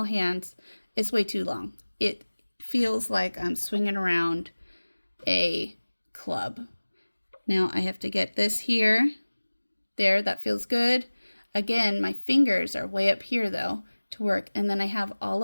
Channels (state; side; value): inverted; both; correlation -1.00